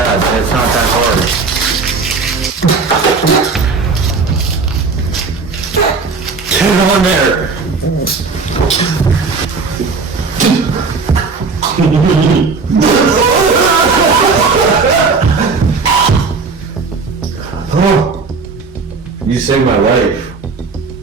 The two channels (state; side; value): quieter; left; 4.5 dB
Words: and it's not that hard. Get on there! Oh, you saved my life.